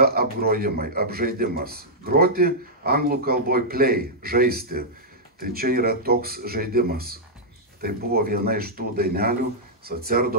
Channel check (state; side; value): normal; both; correlation -0.10